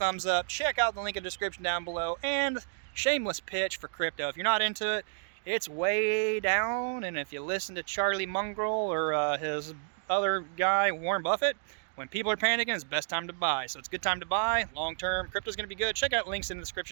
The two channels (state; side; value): silent; left; digital silence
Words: up. Check out the link in the description down below. And shameless pitch for crypto. If you're not into it, it's way down. And if you listen to Charlie Munger or his other guy, Warren Buffett, when people are panicking, it's the best time to buy. So it's a good time to buy. Long term, crypto's going to be good. Check out links in the